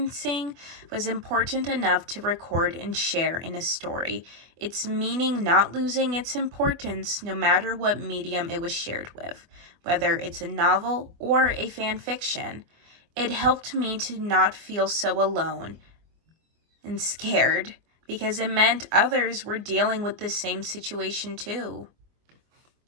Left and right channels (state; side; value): late; left; 24 ms